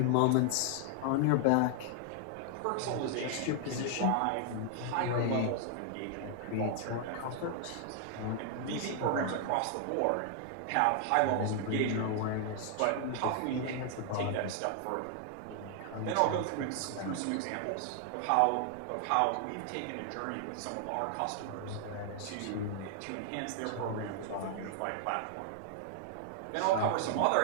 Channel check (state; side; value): different; both; correlation 0.00